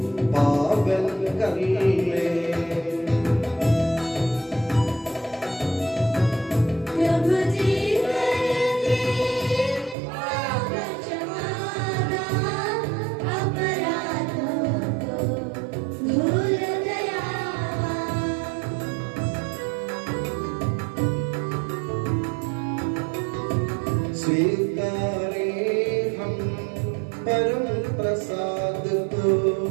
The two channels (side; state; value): left; drops out; at 10.0 s